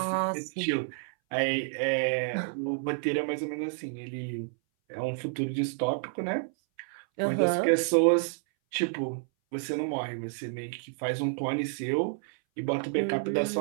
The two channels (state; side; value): silent; left; 58 dB below the other